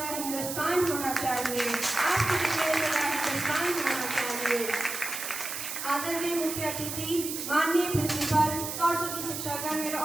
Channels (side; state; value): right; noise; hiss, 5 dB below the sound